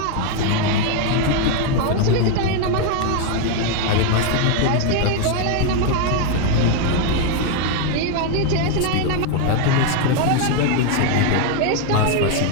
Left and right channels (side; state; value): both; different; correlation 0.01